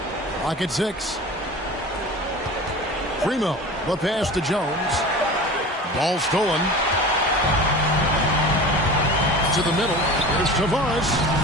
Clock at 6. Primo. The pass to Jones. Ball stolen. To the middle. Here's Tavares.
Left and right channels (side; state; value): both; normal; correlation 0.35